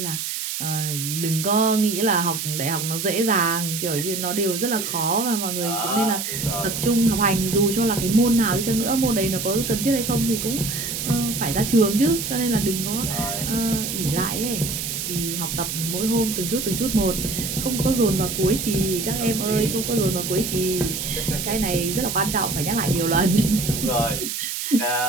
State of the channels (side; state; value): right; noise; hiss, 4 dB below the sound